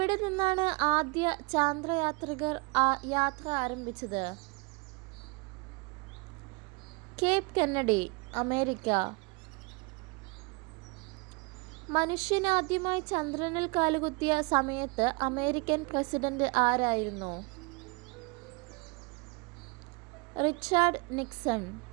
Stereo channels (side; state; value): left; quieter; 29.1 dB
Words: നിന്നാണ് ആദ്യ ചാന്ദ്രയാത്രികർ യാത്ര ആരംഭിച്ചത്? Cape Kennedy, America. മനുഷ്യൻ ആദ്യമായി ചന്ദ്രനിൽ കാലുകുത്തിയ സമയത്ത് അമേരിക്കൻ പ്രസിഡന്റ് ആരായിരുന്നു? Richard Nixon.